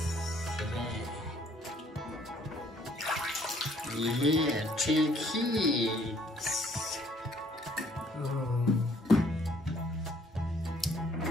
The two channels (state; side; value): normal; both; correlation 0.62